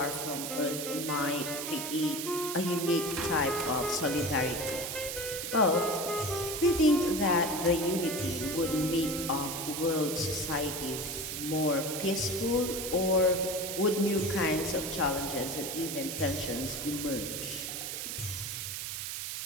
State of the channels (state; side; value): noise; right; hiss, 5 dB below the sound